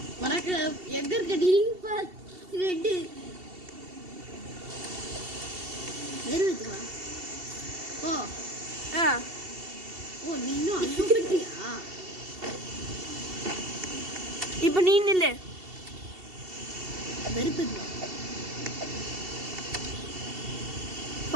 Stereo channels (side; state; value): left; late; 2.7 ms